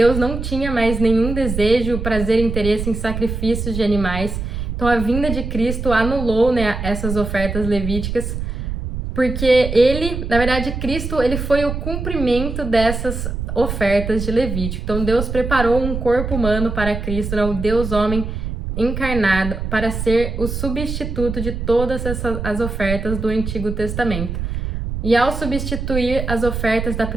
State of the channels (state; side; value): noise; right; rumble, 5 dB below the sound